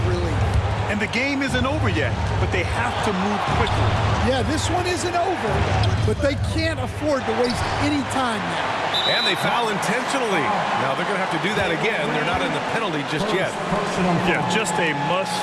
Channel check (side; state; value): both; identical; correlation 1.00